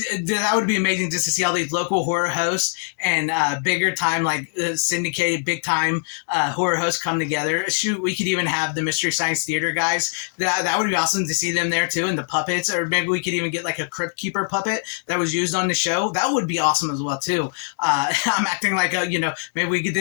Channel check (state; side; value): silent; right; digital silence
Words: would be amazing just to see all these local horror hosts and bigger time, like syndicated, big time horror hosts come together. Shoot, we could even have the Mystery Science Theater guys. That would be awesome to see them there too, and the puppets, or maybe we could even get like a Crypt Keeper puppet that was used on the show. That would be awesome as well too. I'm acting like maybe we get